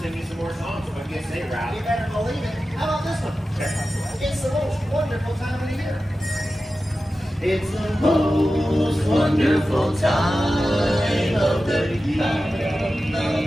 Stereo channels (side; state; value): both; normal; correlation 0.93